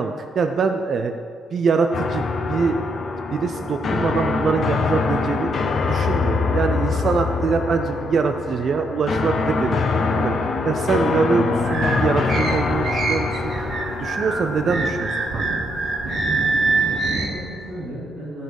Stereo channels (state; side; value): normal; both; correlation 0.76